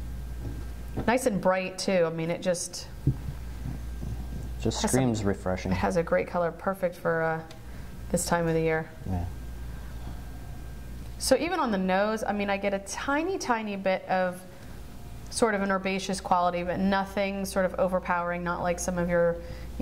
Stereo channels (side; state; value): both; identical; correlation 1.00